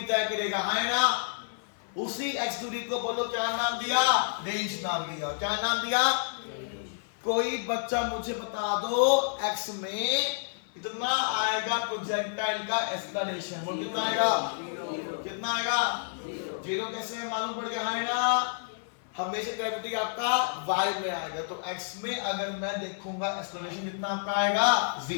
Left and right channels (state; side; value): silent; right; 55 dB below the other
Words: तय करेगा, है ना? उसी x दूरी को बोलो क्या नाम दिया? रेंज नाम दिया। क्या नाम दिया? कोई बच्चा मुझे बता दो x में कितना आएगा प्रोजेक्टाइल का एक्सेलरेशन? बोल कितना आएगा? कितना आएगा? जीरो। कैसे मालूम पड़ गया, है ना? हमेशा ग्रेविटी आपका y में आएगा, तो x में अगर मैं देखूंगा एक्सेलरेशन कितना आपका आएगा?